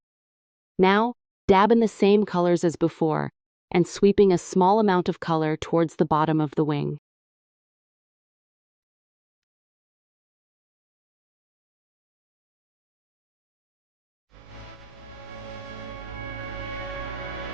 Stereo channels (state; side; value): normal; both; correlation 0.98